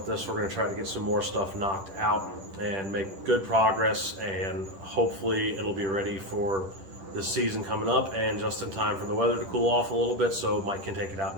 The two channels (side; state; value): left; late; 10 ms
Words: this. We're going to try to get some more stuff knocked out and make good progress, and hopefully it'll be ready for this season coming up and just in time for the weather to cool off a little bit so Mike can take it out